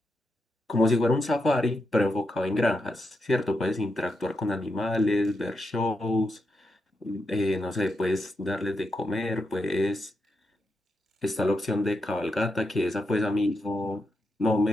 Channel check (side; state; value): both; normal; correlation 0.85